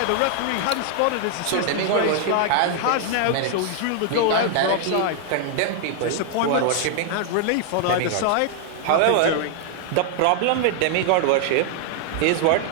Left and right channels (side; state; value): both; different; correlation 0.00